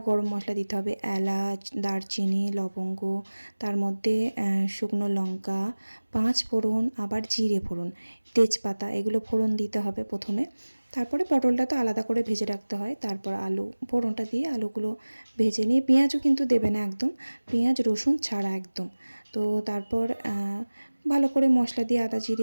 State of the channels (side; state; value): both; inverted; correlation -1.00